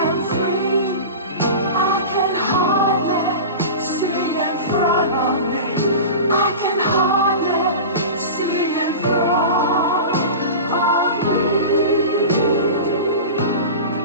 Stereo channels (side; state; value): both; inverted; correlation -0.30